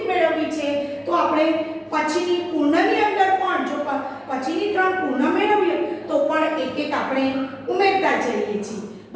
મેળવવી છે તો આપણે પછીની પૂર્ણની અંદર પણ જો પછીની 3 પૂર્ણ મેળવીએ તો પણ એક એક આપણે ઉમેરતા જઈએ છીએ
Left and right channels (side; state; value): both; identical; correlation 1.00